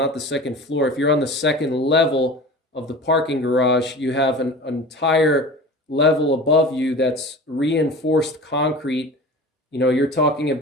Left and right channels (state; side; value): normal; both; correlation 0.36